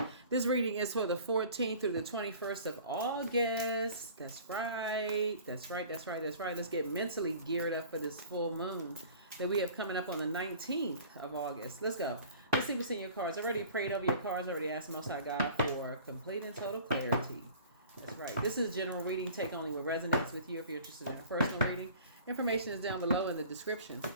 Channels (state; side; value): inverted; both; correlation -0.46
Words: This reading is for the 14th through the 21st of August. That's right. That's right. That's right. That's right. Let's get mentally geared up for this full moon that we have coming up on the 19th of August. Let's go. Let's see what's in your cards. I already prayed over your cards. I already asked Most High God for complete and total clarity. That's right. This is general reading. Take only what resonates with you. If you're interested in a personal reading, information is down below in the description.